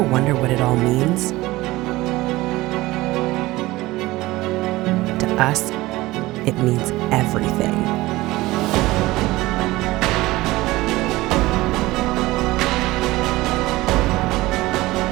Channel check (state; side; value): quieter; left; 19.0 dB